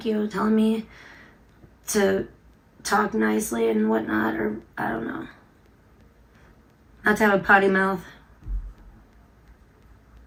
you, telling me to talk nicely and whatnot, or I don't know. Not to have a potty mouth.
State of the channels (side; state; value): both; identical; correlation 1.00